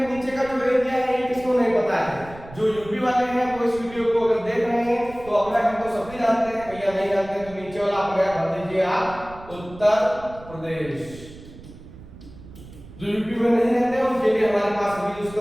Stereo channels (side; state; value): right; noise; rumble, 18 dB below the sound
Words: नीचे का जो एरिया है ये किसको नहीं पता है? जो यूपी वाले हैं वो इस वीडियो को अगर देख रहे हैं तो अपना हम तो सभी जानते हैं, भैया नहीं जानते तो नीचे वाला आप भर दीजिए आप उत्तर प्रदेश। जो यूपी में नहीं रहते उनके लिए हमारे पास अभी